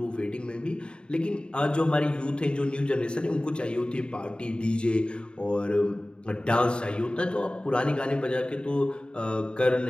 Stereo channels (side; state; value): right; late; 0.052 ms